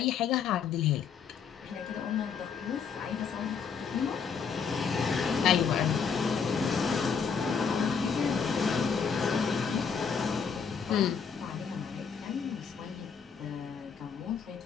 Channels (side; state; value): right; quieter; 6.3 dB